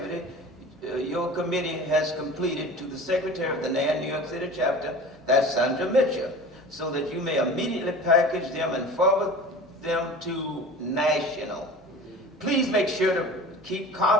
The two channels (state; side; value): normal; both; correlation 0.38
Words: your committee has completed to the Secretary of the NAN New York City chapter, that's Sandra Mitchell, so that you may immediately package them and forward them to National. Please make sure to keep